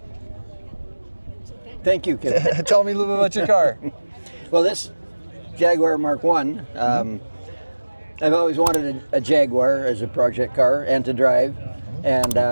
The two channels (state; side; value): inverted; both; correlation -1.00